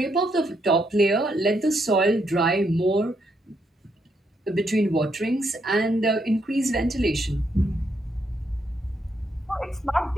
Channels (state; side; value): normal; both; correlation 0.77